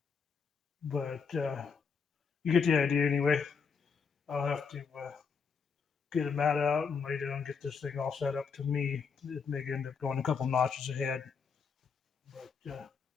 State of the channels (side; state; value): right; quieter; 5.7 dB